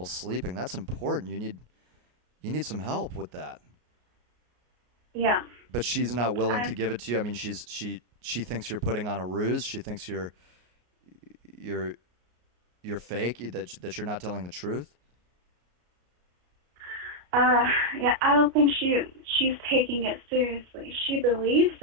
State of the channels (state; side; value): late; left; 33 ms